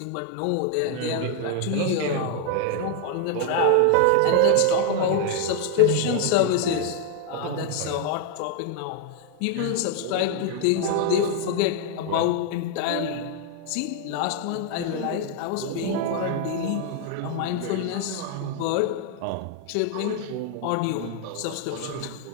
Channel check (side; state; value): both; different; correlation 0.00